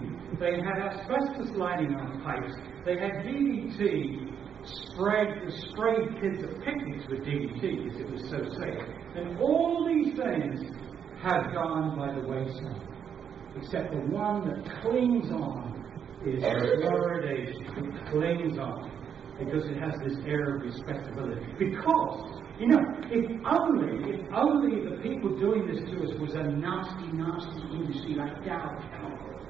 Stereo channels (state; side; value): quieter; left; 7.9 dB